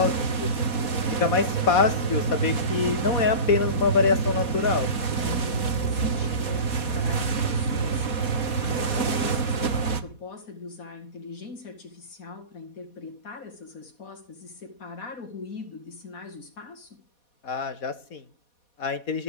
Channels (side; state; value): right; late; 4.2 ms